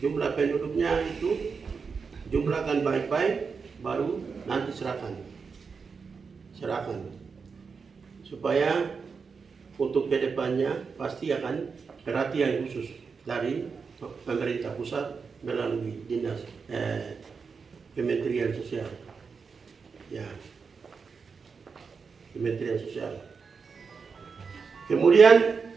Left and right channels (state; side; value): quieter; left; 5.3 dB